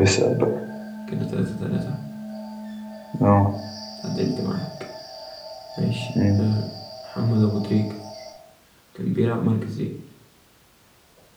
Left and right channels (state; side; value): identical; both; correlation 1.00